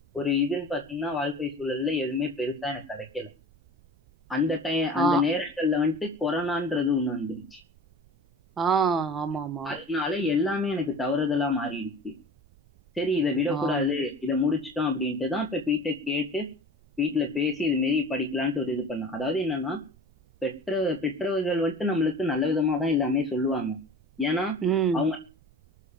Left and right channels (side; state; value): right; noise; rumble, 29 dB below the sound